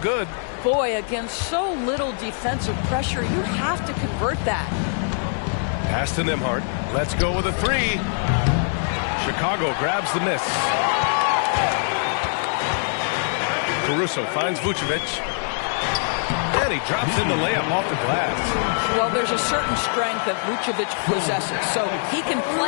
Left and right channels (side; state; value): right; silent; digital silence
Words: Boy, against so little defensive pressure, you have to convert that. Pass to Nembhard. Let's go with a 3. Chicago grabs the miss. Caruso finds Vucevic. And he drops in the layup off the glass. Well, there's a certain strength that Vucevic possesses, so he can